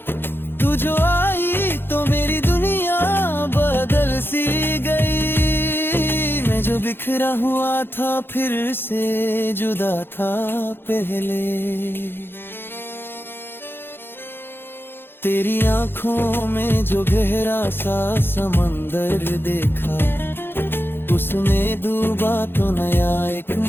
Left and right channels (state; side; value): late; right; 0.10 ms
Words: तू जो आई तो मेरी दुनिया बदल सी गई, मैं जो बिखरा हुआ था फिर से जुदा था पहले। तेरी आंखों में जो गहरा सा समंदर देखा, उसमें डूबा तो नया एक